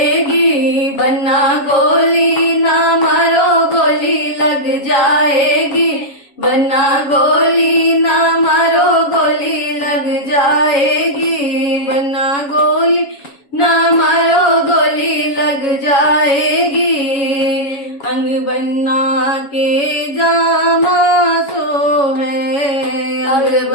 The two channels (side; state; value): right; late; 7.2 ms